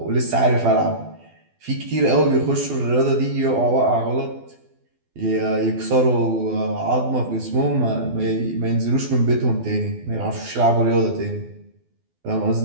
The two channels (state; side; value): late; left; 12 ms